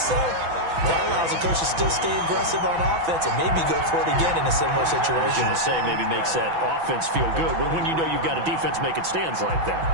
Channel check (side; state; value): left; late; 6.0 ms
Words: that allows the coach to still stay aggressive on offense and maybe go for it again in a similar situation. I was going to say, maybe makes that offense feel good when you know you've got a defense making stands like that.